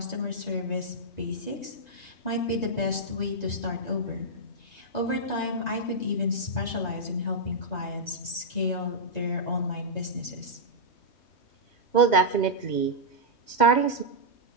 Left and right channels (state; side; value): late; right; 3.2 ms